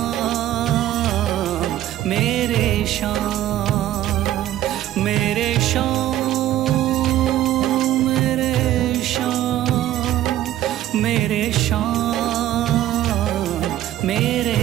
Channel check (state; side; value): quieter; left; 13.3 dB